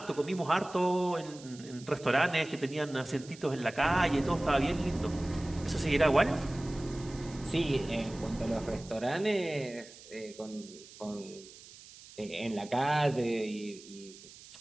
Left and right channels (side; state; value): right; noise; hiss, 19 dB below the sound